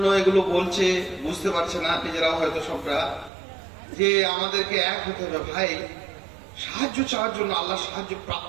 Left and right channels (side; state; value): left; drops out; at 3.3 s